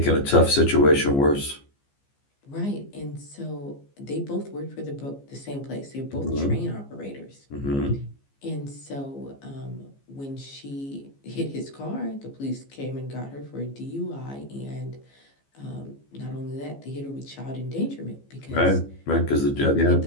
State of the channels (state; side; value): late; right; 15 ms